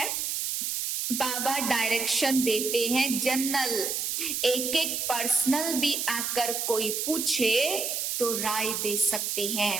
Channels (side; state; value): right; noise; hiss, 1 dB below the sound